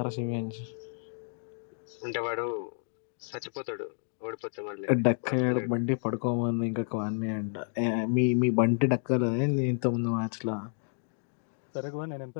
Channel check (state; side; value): silent; right; digital silence